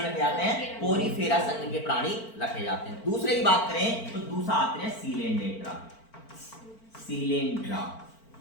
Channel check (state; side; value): late; right; 4.5 ms